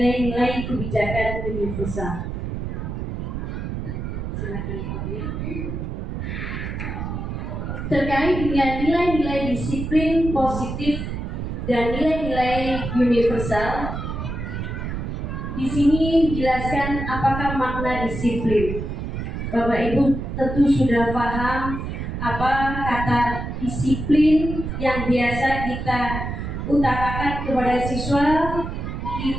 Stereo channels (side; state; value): right; noise; rumble, 5 dB below the sound